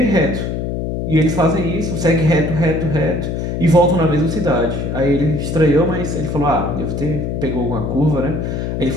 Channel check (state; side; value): noise; left; hum, 3 dB below the sound